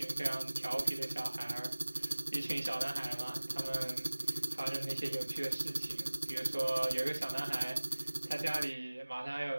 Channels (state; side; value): inverted; both; correlation -1.00